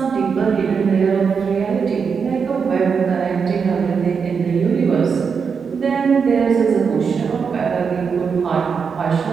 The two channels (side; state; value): left; quieter; 6.0 dB